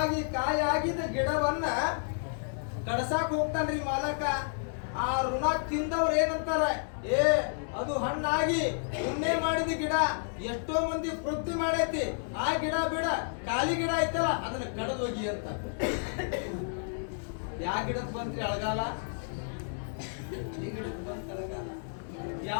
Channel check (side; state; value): right; silent; digital silence